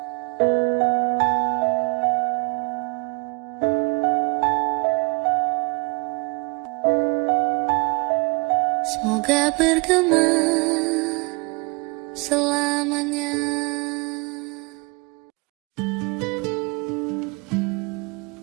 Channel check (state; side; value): quieter; left; 28.3 dB